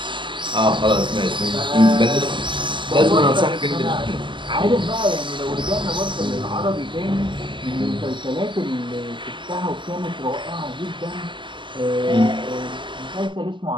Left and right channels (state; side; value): late; left; 0.24 ms